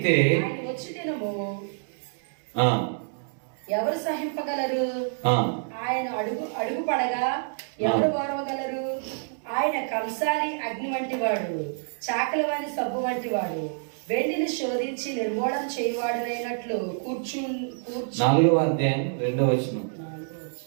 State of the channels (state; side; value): silent; left; digital silence